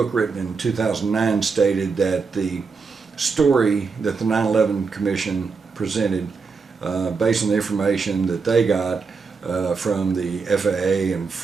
written in 2009 stated that the story that the 9/11 Commission presented, based on the information that they got from the FAA and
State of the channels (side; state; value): left; quieter; 4.9 dB